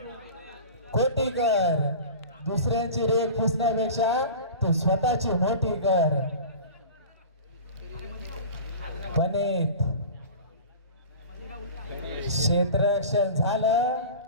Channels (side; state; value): both; inverted; correlation -0.36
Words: खोटी कर. दुसऱ्यांची रेख पुसण्यापेक्षा तू स्वतःची मोठी कर. गणित क्षेत्ररक्षण झालं